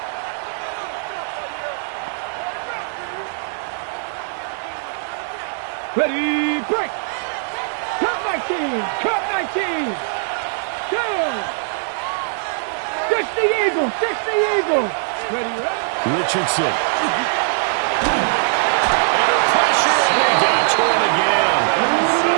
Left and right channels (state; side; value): silent; left; digital silence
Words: Ready, break. Cut 19. Cut 19. Down. 60 Eagles. 60 Eagles. Ready, ready. Richardson. Under pressure, and they got to him again.